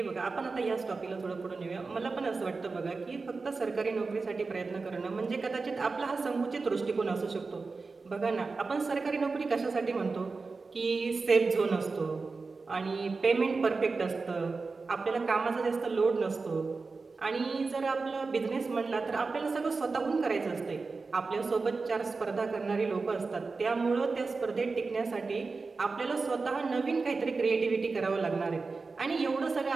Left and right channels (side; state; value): left; quieter; 4.2 dB